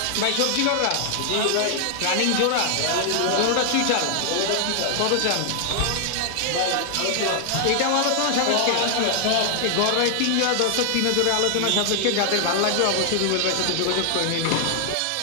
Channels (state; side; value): different; both; correlation 0.00